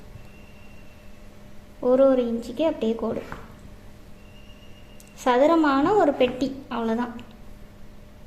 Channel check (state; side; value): identical; both; correlation 1.00